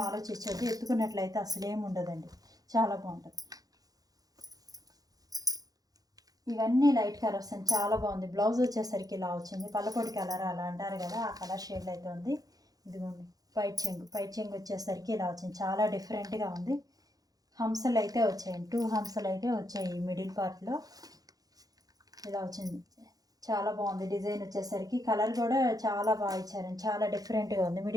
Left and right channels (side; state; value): left; late; 0.18 ms